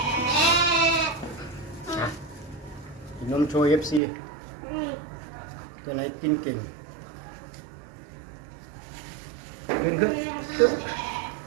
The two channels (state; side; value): drops out; left; at 4.0 s